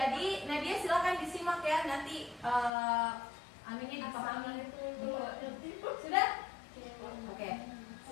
Nadia silakan disimak ya, nanti aminnya dipahami. Sudah? Oke,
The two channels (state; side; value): drops out; right; at 2.7 s